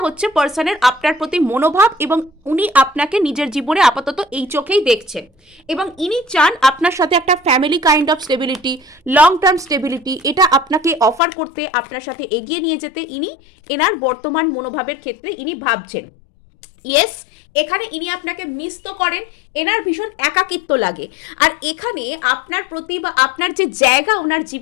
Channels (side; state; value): right; drops out; at 11.2 s